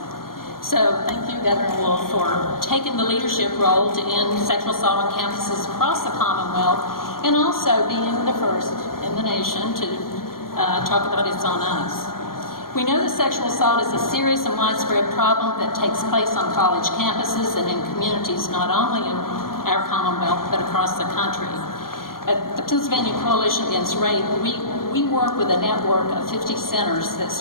So thank you, Governor Wolf, for taking the leadership role to end sexual assault on campuses across the Commonwealth, and also being the first in the nation to talk about It's on Us. We know that sexual assault is a serious and widespread problem that takes place on college campuses and in communities not only in our Commonwealth, but across the country. At the Pennsylvania Coalition Against Rape, we work with a network of 50 centers that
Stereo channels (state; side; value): late; right; 0.92 ms